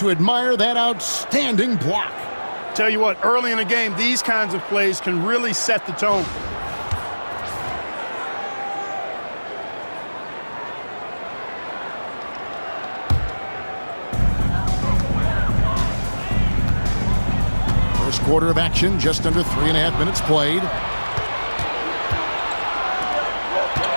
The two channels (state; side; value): inverted; both; correlation -1.00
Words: admire that outstanding block. Tell you what, early in the game, these kinds of plays can really set the tone. First quarter of action, just under 3.5 minutes played.